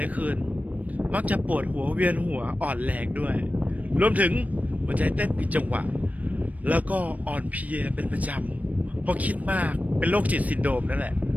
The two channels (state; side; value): late; left; 0.071 ms